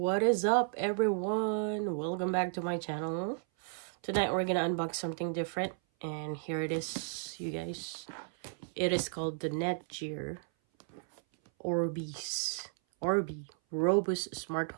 is up, everyone? Welcome back to my channel. Tonight we're gonna unbox something different, and here it is, you guys. It is called the Netgear Orbi Robust Smart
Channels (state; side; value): silent; left; 55 dB below the other